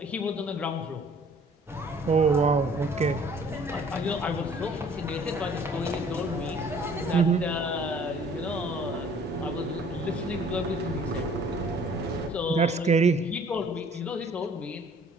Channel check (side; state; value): both; normal; correlation 0.55